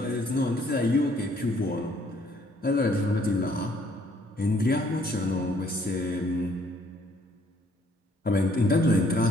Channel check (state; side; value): normal; both; correlation 0.64